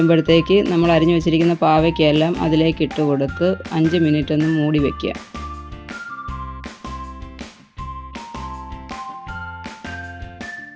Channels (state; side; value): identical; both; correlation 1.00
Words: നമ്മൾ അരിഞ്ഞു വെച്ചിരിക്കുന്ന പാവയ്ക്കയെല്ലാം അതിലേക്ക് ഇട്ട് കൊടുത്ത് 5 മിനിറ്റ് ഒന്ന് മൂടി വയ്ക്കുക.